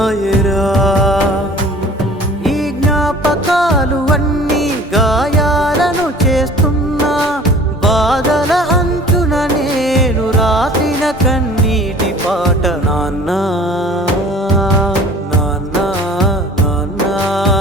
ఈ జ్ఞాపకాలు అన్నీ గాయాలను చేస్తున్నా బాధల అంచున నేను రాసిన కన్నీటి పాట నాన్న నాన్న నాన్న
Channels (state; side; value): normal; both; correlation 0.47